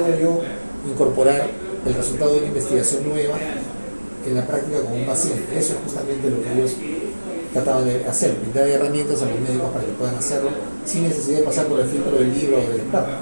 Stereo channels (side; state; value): both; inverted; correlation -1.00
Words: yo incorporar el resultado de una investigación nueva en la práctica con un paciente? Eso es justamente lo que ellos trataban de hacer, brindar herramientas a los médicos para que puedan hacerlo sin necesidad de pasar por el filtro del libro o del